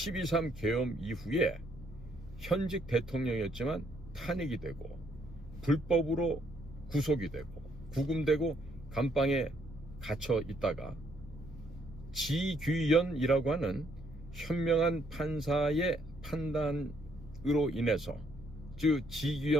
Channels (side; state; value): both; normal; correlation 0.70